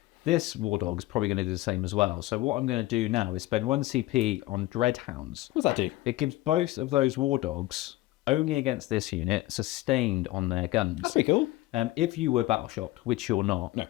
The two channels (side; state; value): right; quieter; 17.7 dB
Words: This War Dog's probably going to do the same as well. So what I'm going to do now is spend 1 CP on Dreadhounds. What does that do? It gives both of those War Dogs, only against this unit, sustained on their guns. That's pretty cool. If you were battle shocked, which you're not, No.